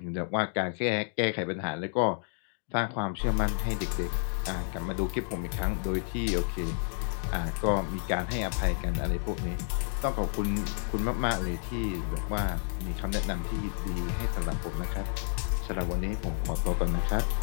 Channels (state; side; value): silent; right; 55 dB below the other